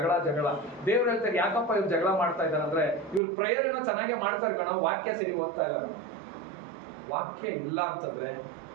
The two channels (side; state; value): left; drops out; at 3.2 s